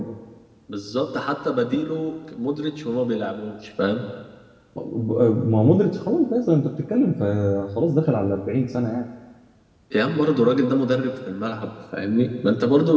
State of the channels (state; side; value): identical; both; correlation 1.00